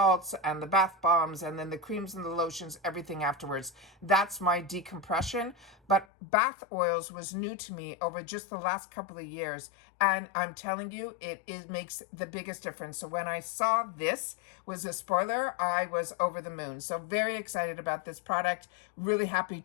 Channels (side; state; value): right; drops out; at 6.1 s